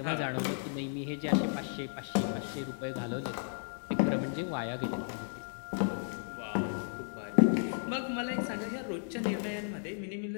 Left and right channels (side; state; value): right; silent; digital silence